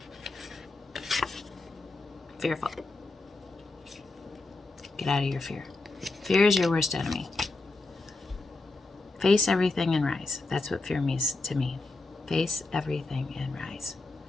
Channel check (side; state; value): right; quieter; 3.2 dB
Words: Fearful. Get out of your fear. Fear is your worst enemy. Face everything and rise. That's what fear means to me. Face everything and rise.